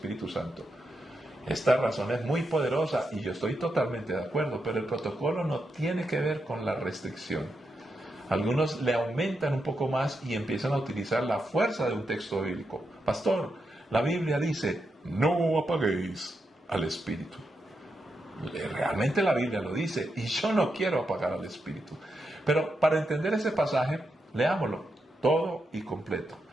Santo. Esta razón es muy poderosa y yo estoy totalmente de acuerdo, pero el protocolo no tiene que ver con la restricción. Algunos le aumentan un poco más y empiezan a utilizar la fuerza de un texto bíblico. Pastor, la Biblia dice, no apaguéis al Espíritu. Realmente la Biblia lo dice y yo no quiero apagar al Espíritu. Pero para entender ese pasaje, leámoslo todo y completo.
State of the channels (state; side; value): normal; both; correlation 0.85